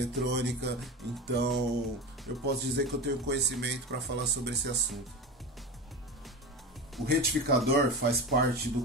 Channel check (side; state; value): both; normal; correlation 0.26